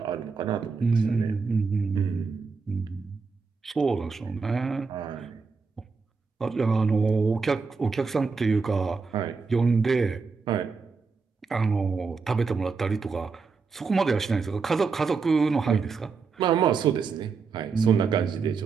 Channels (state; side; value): quieter; left; 4.9 dB